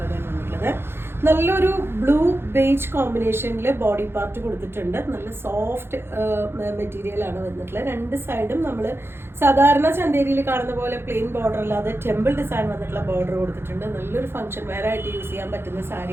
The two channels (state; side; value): late; left; 0.11 ms